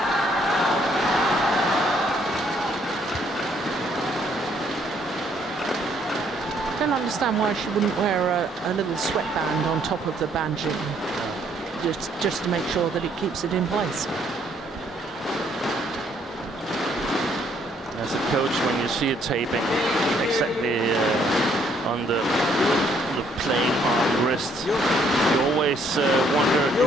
I don't understand why she wouldn't wear a little sweatband on top of the banjing, just to make sure that it keeps it in place. As a coach, when you see it taping exactly on the playing arm wrist, you always wonder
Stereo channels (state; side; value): normal; both; correlation 0.67